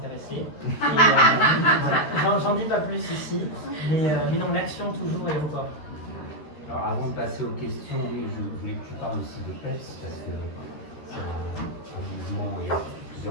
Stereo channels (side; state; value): right; late; 13 ms